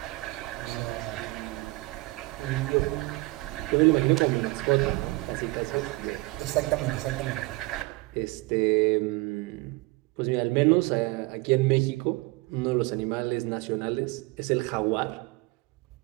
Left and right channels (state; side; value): quieter; left; 22.8 dB